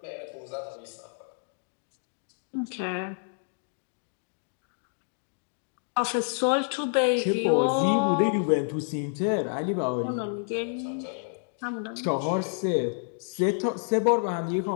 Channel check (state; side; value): silent; right; digital silence